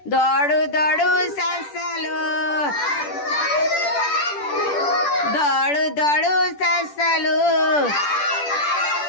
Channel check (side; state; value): right; late; 10 ms